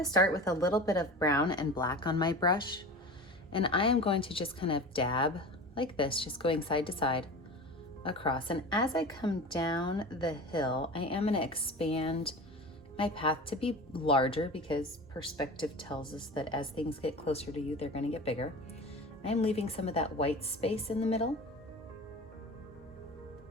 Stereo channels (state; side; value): normal; both; correlation 0.33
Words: start with a little bit of brown and black on my brush. And I am going to just kind of dab like this, just going side to side across. And as I come down the hill, I am going to expand my path to be larger because perspective tells us that as things get closer to you, they're going to get bigger. I'm leaving some of that white space in the middle.